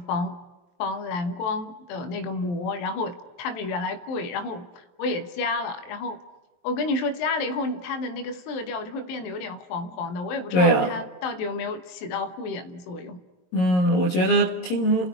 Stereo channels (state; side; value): late; right; 22 ms